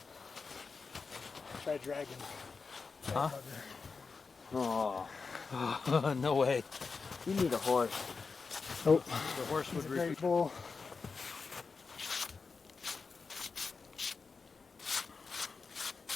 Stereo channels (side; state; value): right; quieter; 4.8 dB